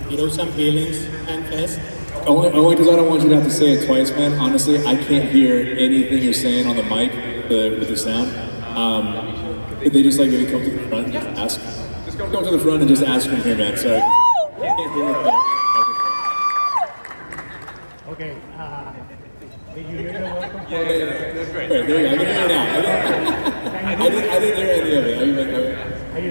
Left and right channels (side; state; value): both; inverted; correlation -1.00